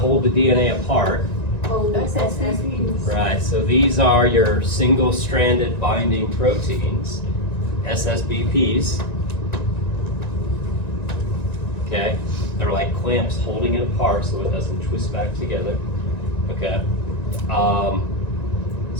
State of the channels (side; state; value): right; late; 1.9 ms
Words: the DNA apart. Oh, SSBPs. Right, so these are your single-stranded binding proteins, SSBPs. Okay, they're like clamps holding it apart so it doesn't twist back together. Okay,